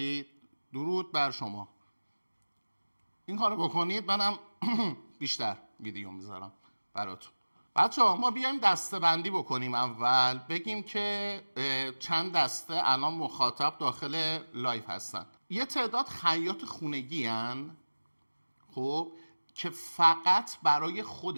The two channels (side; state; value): both; inverted; correlation -1.00